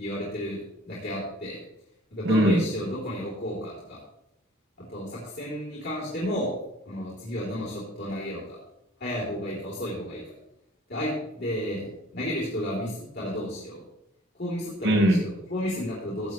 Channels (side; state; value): both; normal; correlation 0.54